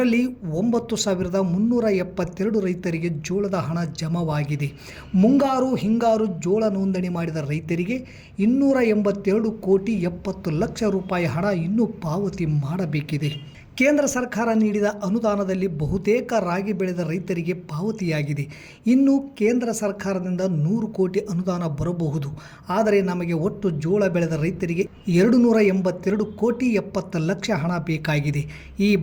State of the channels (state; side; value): identical; both; correlation 1.00